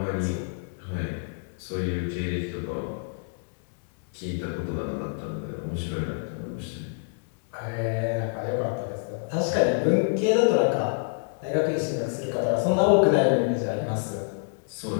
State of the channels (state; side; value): silent; right; digital silence